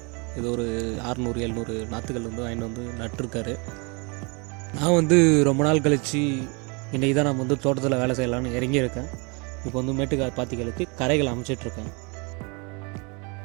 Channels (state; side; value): quieter; left; 31.3 dB